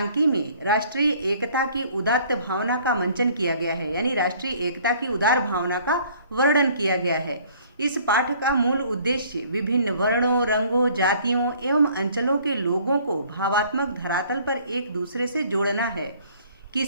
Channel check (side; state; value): both; inverted; correlation -0.56